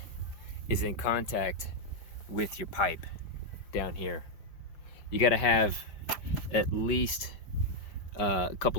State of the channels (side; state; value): right; late; 5.1 ms